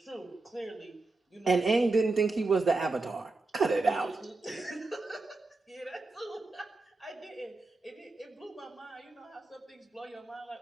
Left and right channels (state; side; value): quieter; left; 3.3 dB